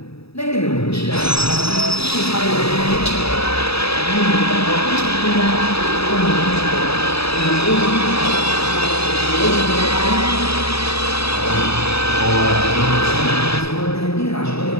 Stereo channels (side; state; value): right; late; 0.78 ms